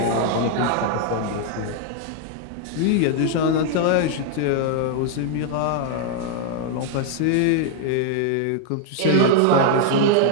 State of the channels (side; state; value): both; different; correlation 0.00